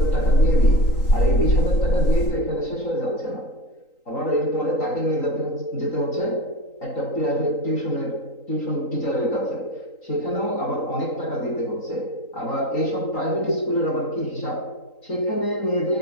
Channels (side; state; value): right; late; 3.9 ms